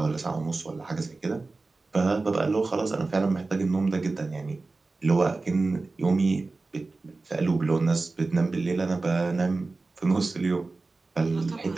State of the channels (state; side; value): quieter; left; 3.6 dB